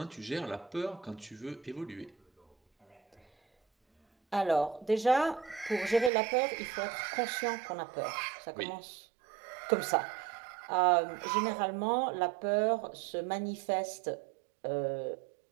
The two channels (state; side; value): drops out; left; at 6.1 s